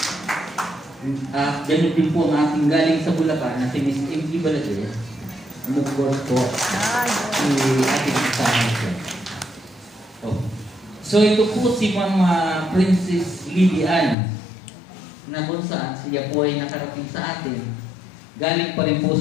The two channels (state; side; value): drops out; right; at 14.2 s